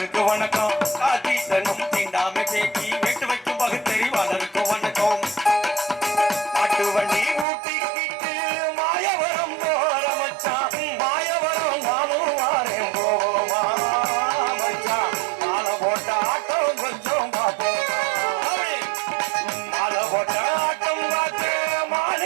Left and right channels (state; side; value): drops out; left; at 7.5 s